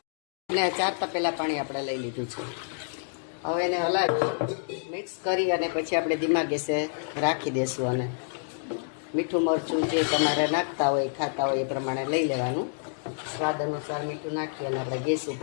અને 4 તપેલા પાણી આપણે લઈ લીધું છે. હવે એને હલાવી મિક્સ કરી અને પછી આપણે ધીમા ગેસે રાખી દઈશું. અને મીઠું મરચું જે તમારે નાખતા હોય ખાતા હોય એ પ્રમાણે લઈ લેવાનું. સ્વાદ અનુસાર મીઠું નાખી અને આપણે ગેસ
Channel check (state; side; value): silent; right; digital silence